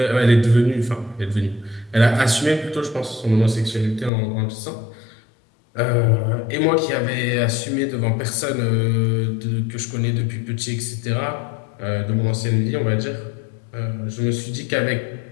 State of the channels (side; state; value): right; drops out; at 4.1 s